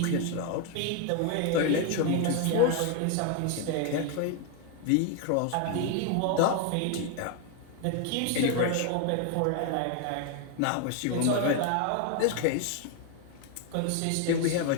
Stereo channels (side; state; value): both; different; correlation 0.01